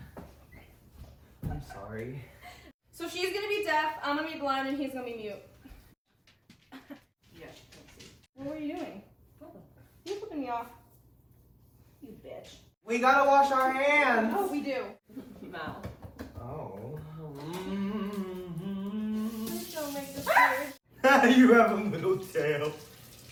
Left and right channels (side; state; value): both; identical; correlation 1.00